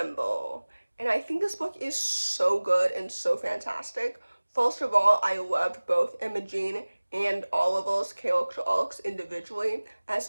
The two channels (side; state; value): both; inverted; correlation -1.00